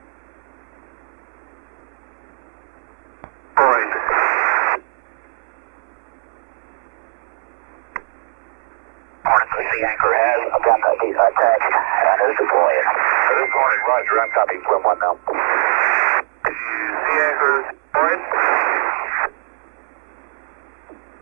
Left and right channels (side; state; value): left; silent; 65 dB below the other